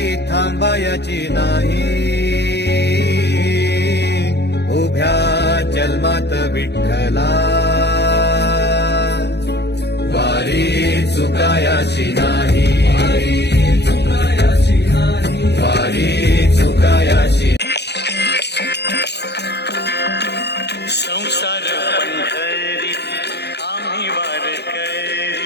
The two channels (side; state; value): right; late; 0.49 ms